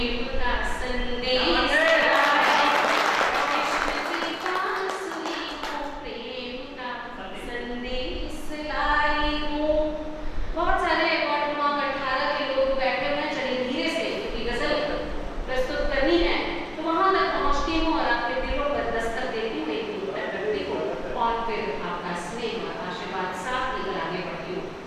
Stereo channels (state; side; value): identical; both; correlation 1.00